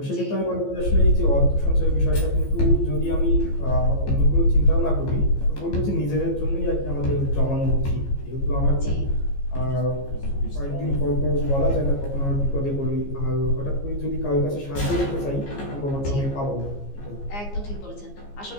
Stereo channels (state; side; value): late; right; 15 ms